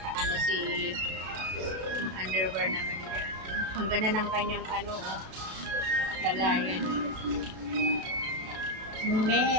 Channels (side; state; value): left; late; 33 ms